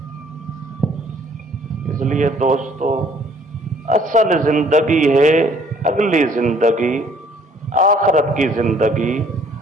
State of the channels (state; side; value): normal; both; correlation 0.59